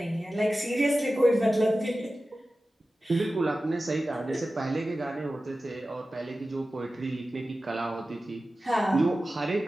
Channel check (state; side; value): normal; both; correlation 0.95